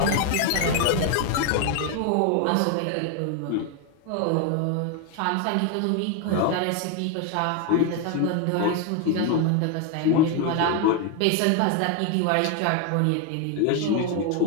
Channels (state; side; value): different; both; correlation 0.01